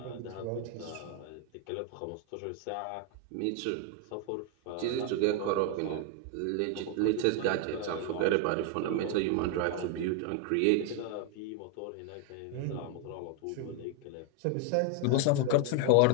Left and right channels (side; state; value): both; different; correlation 0.01